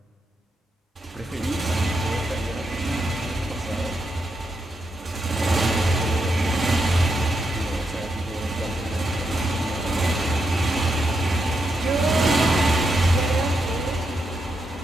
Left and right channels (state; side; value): normal; both; correlation 0.83